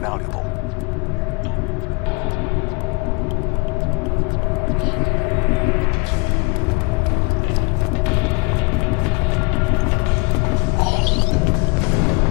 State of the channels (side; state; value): right; quieter; 28.1 dB